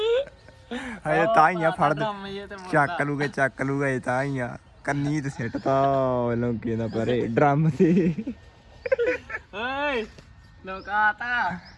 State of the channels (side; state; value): both; identical; correlation 1.00